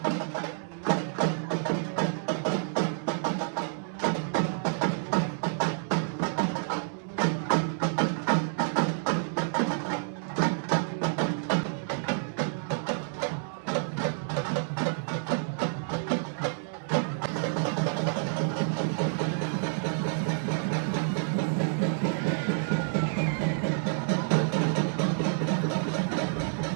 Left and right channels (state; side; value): silent; left; digital silence